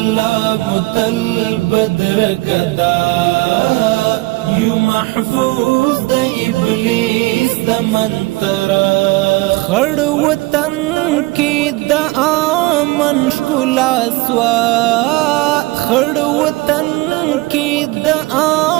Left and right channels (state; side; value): quieter; left; 21.5 dB